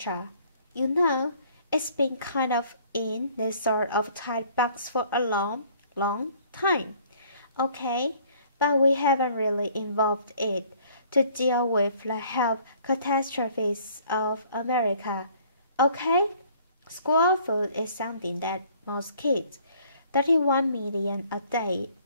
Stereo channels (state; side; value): inverted; both; correlation -0.57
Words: You know, it's been kind of in this sort of tight box for a long time. Okay, but we haven't really involved it to deal with the health catastrophes of America. Okay? School food is something that most kids, 31 million a day,